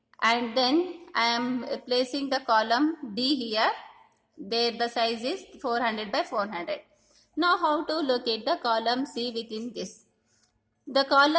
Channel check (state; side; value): identical; both; correlation 1.00